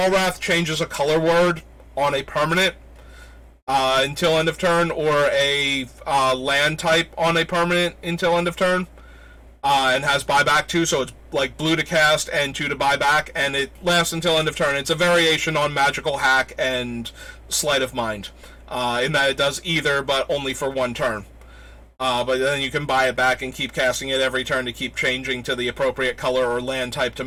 changes a color word on a permanent until end of turn, or a land type on a permanent until end of turn, and has buyback too, so it's like blue to cast and 2 to buyback, and it lasts until end of turn. It's a variation on Magical Hack and Sleight of Mind, in that it does either, but only for 1 turn. But then you can buy it back and keep casting it every turn to keep changing to the appropriate color or land type to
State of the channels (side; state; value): both; identical; correlation 1.00